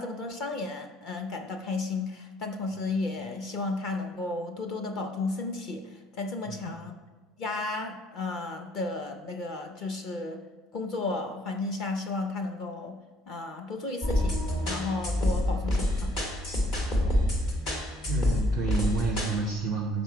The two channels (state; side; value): normal; both; correlation 0.63